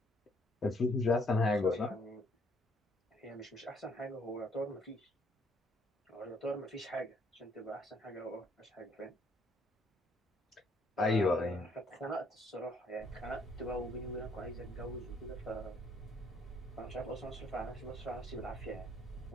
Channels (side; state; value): both; normal; correlation 0.66